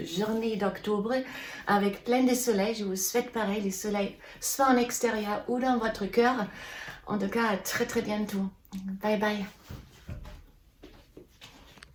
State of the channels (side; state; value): both; identical; correlation 1.00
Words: d'octobre avec plein de soleil. Je vous souhaite pareil, le soleil soit en extérieur ou dans votre cœur. En tout cas, à très bientôt. Bye bye.